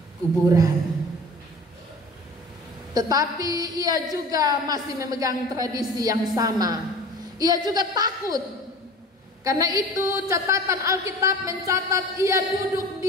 kuburan. Tetapi ia juga masih memegang tradisi yang sama. Ia juga takut. Karena itu catatan Alkitab mencatat ia duduk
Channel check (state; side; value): normal; both; correlation 0.41